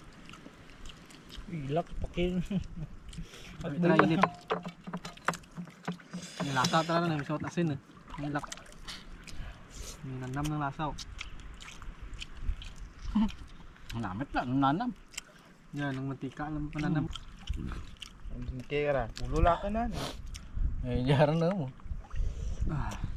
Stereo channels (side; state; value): both; identical; correlation 1.00